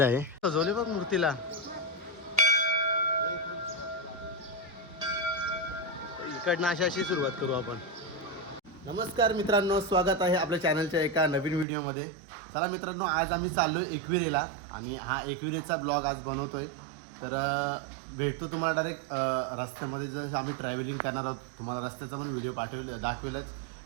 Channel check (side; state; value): left; drops out; at 11.7 s